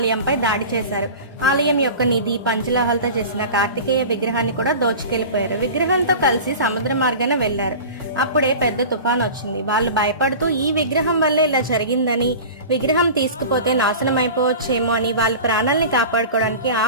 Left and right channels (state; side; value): inverted; both; correlation -0.35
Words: దాడి చేశారు. ఆలయం యొక్క నిధి పంచలోహాలతో చేసిన కార్తికేయ విగ్రహాన్ని కూడా దోచుకెళ్లిపోయారు. విగ్రహంతో కలిసి సముద్ర మార్గాన వెళ్లారు. అప్పుడే పెద్ద తుఫాన్ వచ్చింది. వాళ్ళు భయపడుతూ ఈ విగ్రహం వల్లే ఇలా జరిగిందని, విగ్రహం తీసుకుపోతే నాశనం అయిపోవచ్చేమో అని వాళ్ళ ప్రాణాలని కాపాడుకోవడానికి ఆ